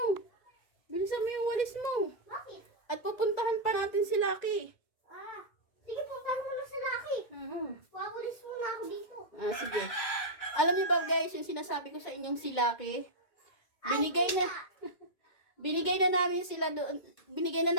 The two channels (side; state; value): right; late; 2.2 ms